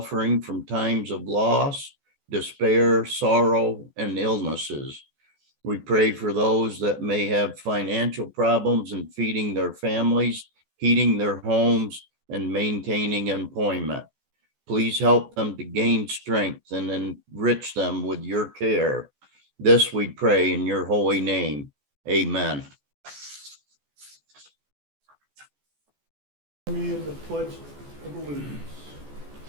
from times of loss, despair, sorrow, and illnesses. We pray for those that may have financial problems in feeding their families, heating their homes, and maintaining employment. Please help them to gain strength and enrich them with your care. This we pray in your holy name. Amen. Me in the pledge of allegiance.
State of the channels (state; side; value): late; left; 14 ms